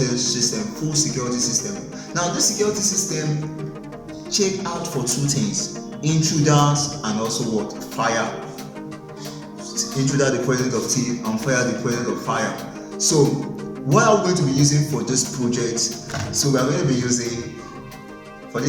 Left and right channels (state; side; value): identical; both; correlation 1.00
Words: system. Now this security system check out for two things: intruders and also what? Fire. Intruder the presence of thief and fire the presence of fire. So what are we going to be using for this project? So we are going to be using for